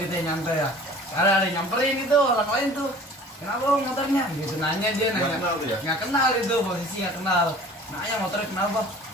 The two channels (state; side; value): normal; both; correlation 0.46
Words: ya, nyantai ya. Karena ada yang nyamperin gitu orang lain tuh. Kenapa Bang, motornya? Gitu nanya dia Nggak nanya. kenal tuh ya? Nggak kenal itu posisi nggak kenal. Nanya motornya kenapa?